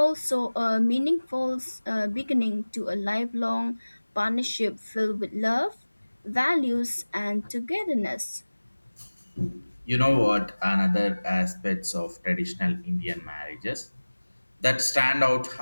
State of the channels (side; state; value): both; inverted; correlation -1.00